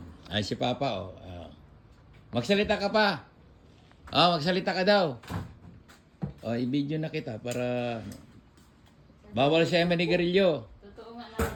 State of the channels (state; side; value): identical; both; correlation 1.00